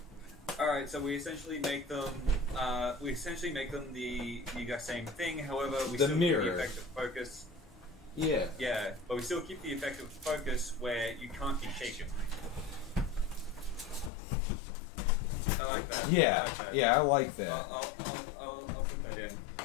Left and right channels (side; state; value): right; drops out; at 14.1 s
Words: All right, so we essentially make them the exact same thing. However, we still keep the effect of focus. Yeah. Yeah, but we still keep the effect of focus where you can't be shaken. I like that. Yeah, I like that. I'll put that in.